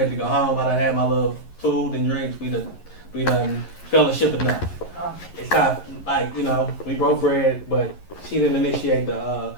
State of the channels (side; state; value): right; late; 11 ms